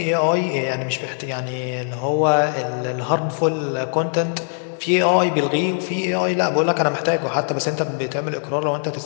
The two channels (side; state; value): right; silent; digital silence